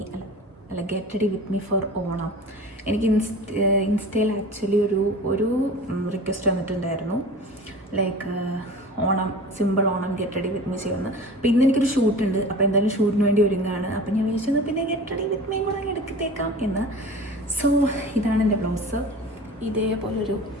അല്ല get ready with me for Onam. എനിക്ക് ഇൻസ്റ്റയിൽ ആക്ച്വലി ഒരു റിക്വസ്റ്റ് വന്നിട്ടുണ്ടായിരുന്നു, like Onam, simple Onam get ready with me ചെയ്യുന്നത്. അപ്പോൾ ഇന്ന് എനിക്കൊരു ഷൂട്ടുണ്ട്, അപ്പോൾ എന്തായാലും ഷൂട്ടിന് വേണ്ടി ഒരുങ്ങുകയാണ്. അപ്പോൾ ഞാൻ വിചാരിച്ചത് പിന്നെ ഗെറ്റ് റെഡി വിത്ത് മീ കൂടെ എടുത്തേക്കാം എന്ന്. സോ ഇതാണ് എൻ്റെ ബ്ലൗസ്, ഇതേപോലൊരു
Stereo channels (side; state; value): both; normal; correlation 0.37